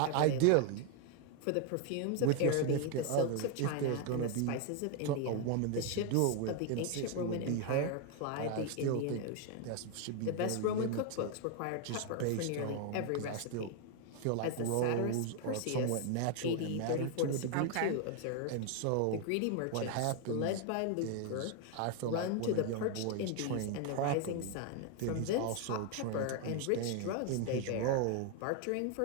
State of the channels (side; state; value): both; different; correlation 0.01